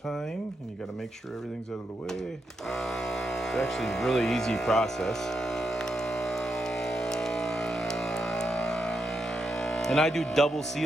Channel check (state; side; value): normal; both; correlation 0.83